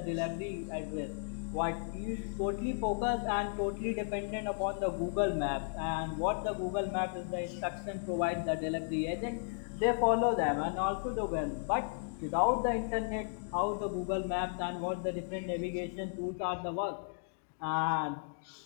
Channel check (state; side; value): silent; right; digital silence